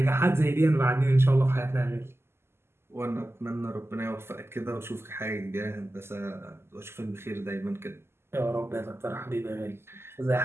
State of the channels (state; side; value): late; left; 0.12 ms